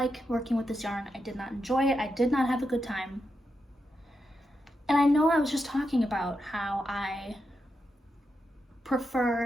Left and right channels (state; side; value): normal; both; correlation 0.86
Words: working with this yarn. I did not enjoy it. I did not have a good time. And I know I was just talking about how I